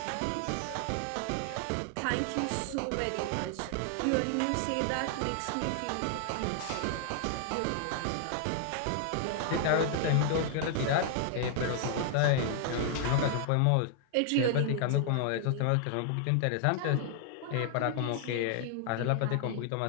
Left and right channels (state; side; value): different; both; correlation 0.00